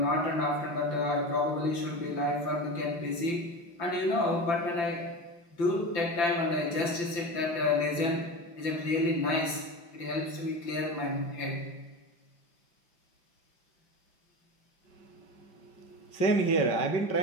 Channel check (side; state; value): right; late; 5.9 ms